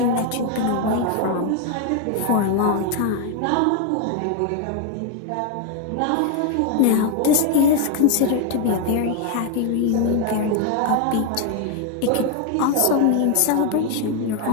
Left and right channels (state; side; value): different; both; correlation 0.01